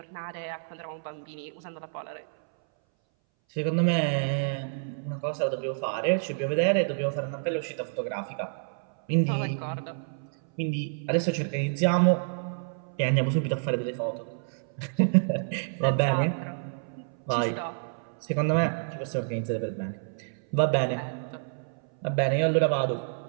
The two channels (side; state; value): left; silent; 59 dB below the other